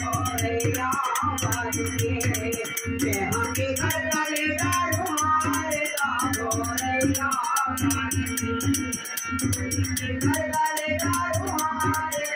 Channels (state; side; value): identical; both; correlation 1.00